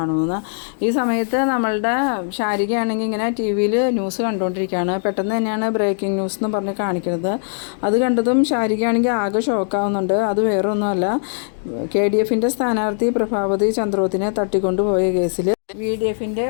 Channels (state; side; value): silent; right; digital silence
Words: ഈ സമയത്ത് നമ്മളുടെ ശാരികയാണെങ്കിൽ ഇങ്ങനെ TV-യിൽ ന്യൂസ് കണ്ടുകൊണ്ടിരിക്കുകയാണ്. പെട്ടെന്ന് തന്നെയാണ് ബ്രേക്കിംഗ് ന്യൂസ് എന്ന് പറഞ്ഞ് കാണിക്കുന്നത്. അത് കണ്ടതും ശാരികയാണെങ്കിൽ ആകെ ഷോക്കാവുന്നുണ്ട്. അത് വേറെ ഒന്നുമല്ല, KDFൻ്റെ സ്ഥാനാർത്ഥി പ്രഭാവതി ചന്ദ്രോത്തിനെ തട്ടിക്കൊണ്ടുപോയ കേസിൽ VDFൻ്റെ